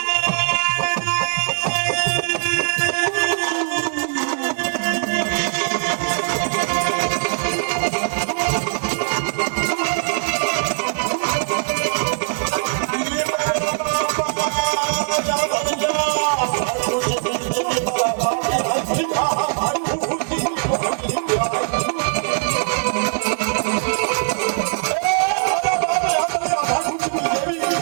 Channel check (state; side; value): silent; left; digital silence